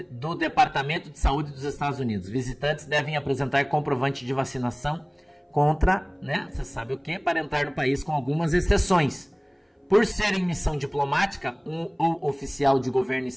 do Departamento de Saúde dos Estados Unidos. Visitantes devem apresentar comprovante de vacinação contra, né, você sabe o que, para entrar no país, com algumas exceções. Por ser em missão diplomática, ou oficial de governo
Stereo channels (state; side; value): identical; both; correlation 1.00